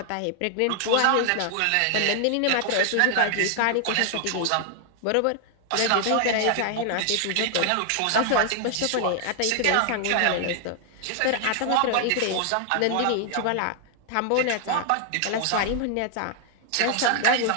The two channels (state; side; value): different; both; correlation 0.00